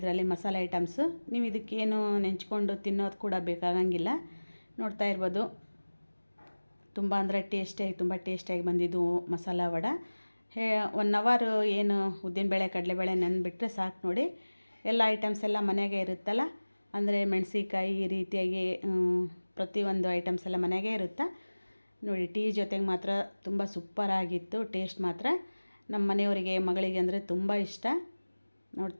ಮಸಾಲೆ ಐಟಮ್ಸು. ನೀವು ಇದಕ್ಕೇನು ನೆಂಚ್ಕೊಂಡು ತಿನ್ನೋದು ಕೂಡ ಬೇಕಾಗಂಗಿಲ್ಲ. ನೋಡ್ತಾ ಇರ್ಬೋದು, ತುಂಬ ಅಂದರೆ ತುಂಬ ಟೇಸ್ಟಿಯಾಗಿ ಬಂದಿದ್ದು ಮಸಾಲ ವಡೆ. 1 ಅವರ್ ಏನು ಉದ್ದಿನಬೇಳೆ, ಕಡಲೆಬೇಳೆ ನೆನೆಬಿಟ್ರೆ ಸಾಕು ನೋಡಿ. ಎಲ್ಲ ಐಟಮ್ಸ್ ಎಲ್ಲ ಮನೆಯಾಗೆ ಇರುತ್ತಲ್ಲ, ಅಂದರೆ ಮೆಣಸಿಕಾಯಿ ಈ ರೀತಿಯಾಗಿ ಪ್ರತಿಯೊಂದು ಐಟಮ್ಸ್ ಎಲ್ಲ ಮನೆಯಾಗೆ ಇರುತ್ತೆ ನೋಡಿ. ಟೀ ಜೊತೆಗೆ ಮಾತ್ರ ತುಂಬ ಸೂಪರಾಗಿತ್ತು. ಟೇಸ್ಟ್ ಮಾತ್ರ ನಮ್ಮ ಮನೆಯವರಿಗೆ, ಮಗಳಿಗೆ ಅಂದರೆ ತುಂಬ ಇಷ್ಟ.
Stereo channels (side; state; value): both; inverted; correlation -1.00